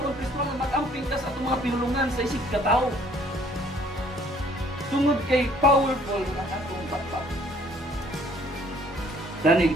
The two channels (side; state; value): both; normal; correlation 0.59